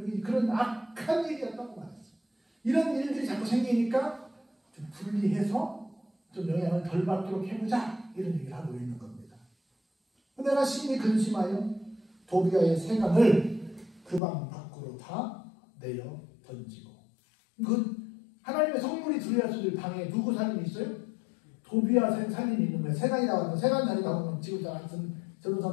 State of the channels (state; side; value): drops out; right; at 14.2 s